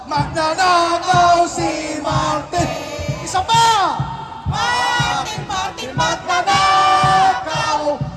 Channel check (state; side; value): identical; both; correlation 1.00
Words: Magnanakaw si Martin. Isa pa! Martin, Martin, magnanakaw.